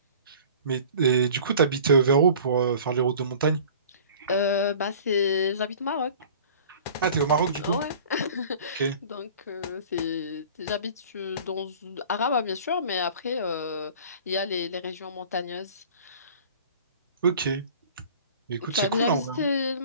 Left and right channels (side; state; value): both; inverted; correlation -0.45